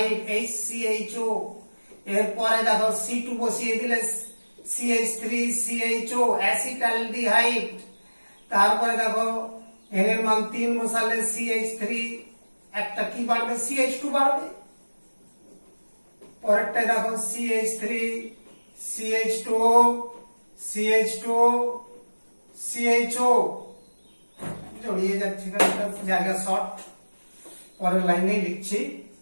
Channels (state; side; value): inverted; both; correlation -1.00